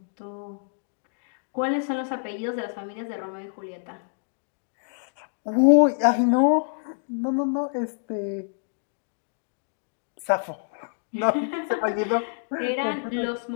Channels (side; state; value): right; silent; digital silence